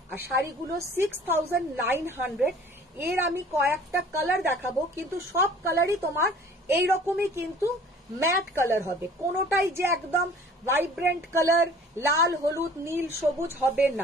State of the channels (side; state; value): both; normal; correlation 0.49